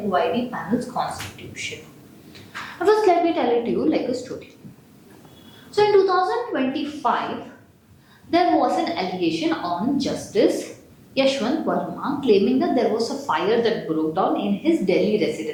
panel's constitution. First, let me tell it to you like a story. So, in 2025, there was an allegation on Justice Yashwant Varma claiming that there was a fire that broke down in his Delhi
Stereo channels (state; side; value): identical; both; correlation 1.00